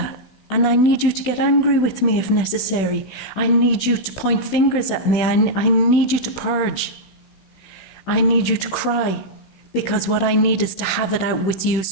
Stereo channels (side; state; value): right; late; 16 ms